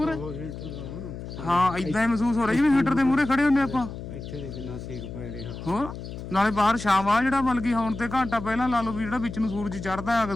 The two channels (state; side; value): noise; left; hum, 10 dB below the sound